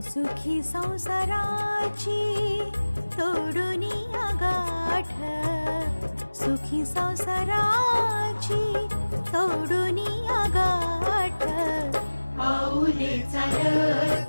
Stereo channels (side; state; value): both; inverted; correlation -1.00